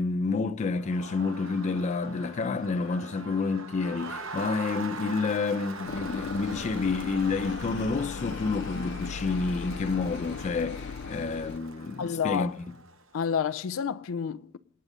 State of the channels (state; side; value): quieter; right; 4.0 dB